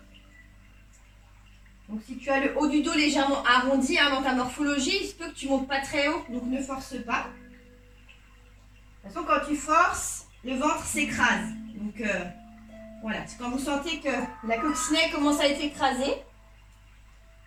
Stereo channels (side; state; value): both; identical; correlation 1.00